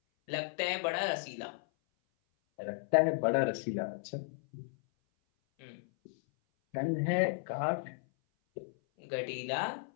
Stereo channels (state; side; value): silent; right; 55 dB below the other